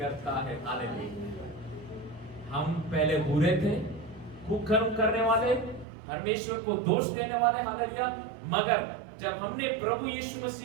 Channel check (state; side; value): drops out; left; at 5.9 s